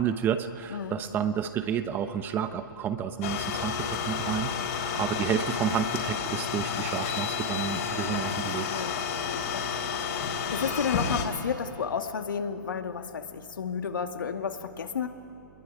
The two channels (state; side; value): noise; right; hum, 23 dB below the sound